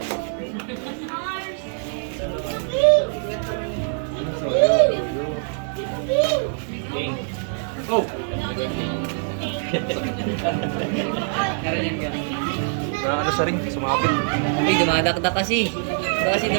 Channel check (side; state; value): left; silent; 61 dB below the other